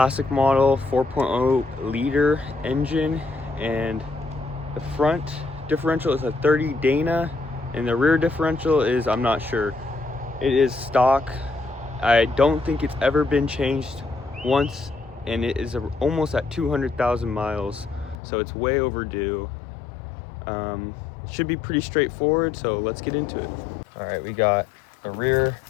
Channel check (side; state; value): right; drops out; at 18.2 s